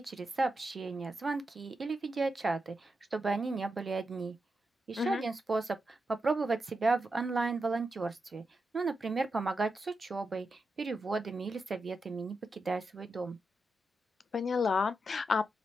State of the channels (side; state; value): both; normal; correlation 0.87